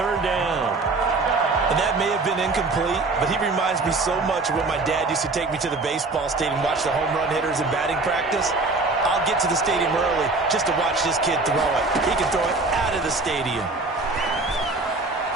down. And that may have been incomplete, but he reminds me so much of when my dad used to take me to the baseball stadium, watch the home run hitters in batting practice. I'll get to the stadium early just to watch this kid throw it. He can throw it out of the stadium.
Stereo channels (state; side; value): quieter; left; 3.5 dB